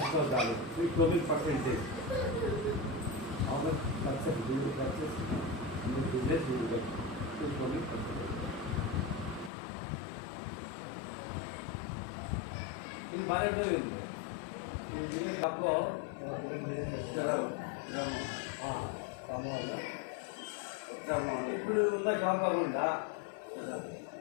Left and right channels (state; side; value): drops out; right; at 9.5 s